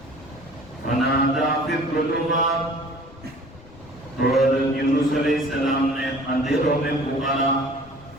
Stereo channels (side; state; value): left; noise; rumble, 23 dB below the sound